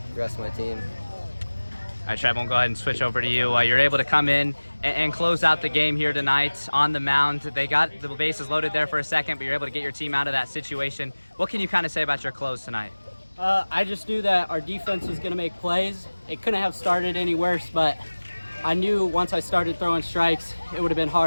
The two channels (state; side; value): inverted; both; correlation -1.00